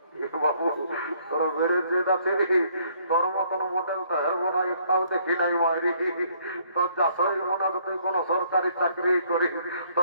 বাবু তোরা বেড়েছে যাচ্ছে দেখি, তোর মতন মোটেল তো হেরবো না, একটাও দেখি নাই মারি। তোর যা শরীর মনে হয় তুই কোনো সরকারি চাকরি করিস,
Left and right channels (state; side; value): inverted; both; correlation -0.65